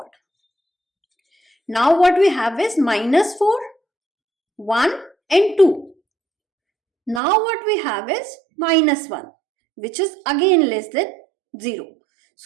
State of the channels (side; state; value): left; drops out; at 7.2 s